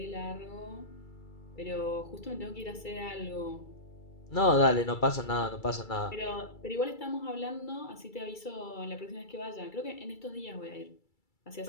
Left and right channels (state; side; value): late; right; 2.3 ms